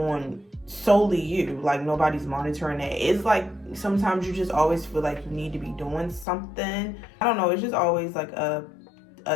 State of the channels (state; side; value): drops out; right; at 6.2 s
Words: solely you. Like, nobody's monitoring that. It's like sometimes you just always feel like you need to be doing something. I don't know. It's just always like a